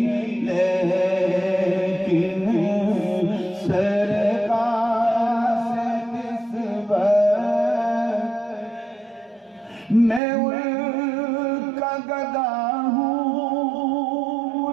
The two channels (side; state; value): left; drops out; at 10.2 s